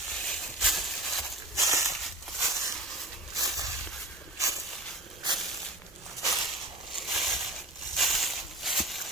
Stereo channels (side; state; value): right; noise; rumble, 23 dB below the sound